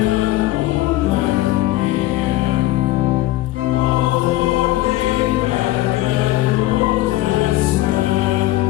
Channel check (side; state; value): right; quieter; 16.7 dB